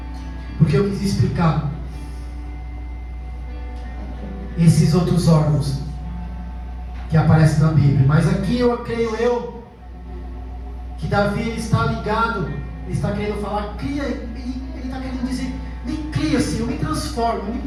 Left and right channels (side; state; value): both; identical; correlation 1.00